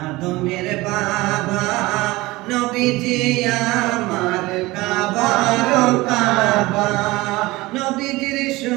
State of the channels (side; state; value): left; quieter; 20.4 dB